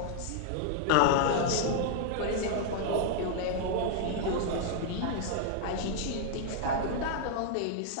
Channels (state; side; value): different; both; correlation -0.01